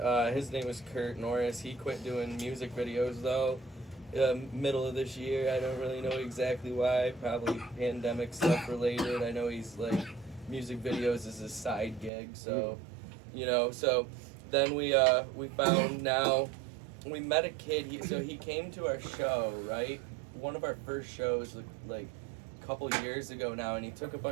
His name was Kurt Norris. He quit doing music videos though. Middle of this year. I don't really know exactly why. Probably pandemic stuff related. I know he's like music videos is his side gig. So, So then we found now. We met a kid. He came to our show, right? One of our first shows, like a couple years ago now, and he took a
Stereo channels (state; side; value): drops out; left; at 12.1 s